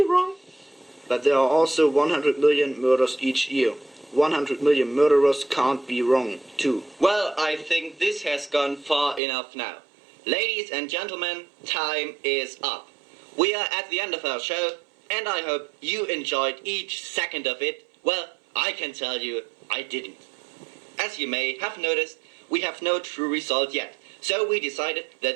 wrong. But there are also 100 million murders each year. 100 million murderers can't be wrong, too. Well, I think this has gone far enough now. Ladies and gentlemen, time is up. We are at the end of our show, and I hope you enjoyed each second of it. Well, I can tell you, I didn't. As you may have noticed, we have no true result yet. So we decided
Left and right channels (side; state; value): left; drops out; at 9.2 s